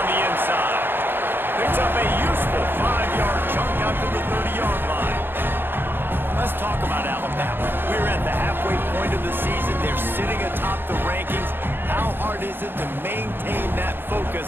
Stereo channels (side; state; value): left; late; 0.10 ms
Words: the inside. Picks up a useful 5-yard chunk out to the 30-yard line. Let's talk about Alabama. We're at the halfway point of the season. They're sitting atop the rankings. How hard is it to maintain that